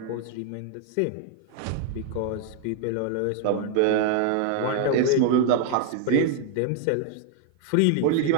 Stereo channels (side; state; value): both; different; correlation 0.00